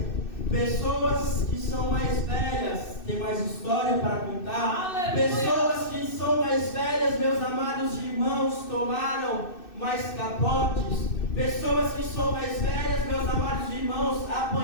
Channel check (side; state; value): right; late; 2.6 ms